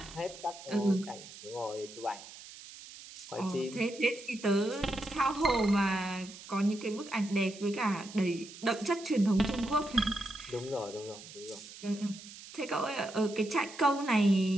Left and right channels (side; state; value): right; noise; hiss, 16 dB below the sound